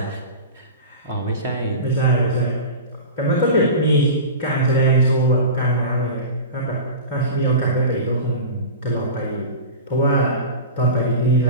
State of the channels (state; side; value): inverted; both; correlation -0.31